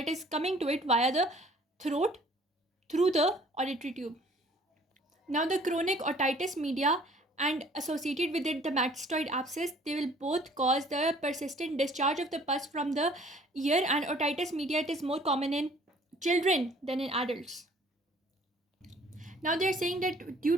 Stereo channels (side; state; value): both; normal; correlation 0.55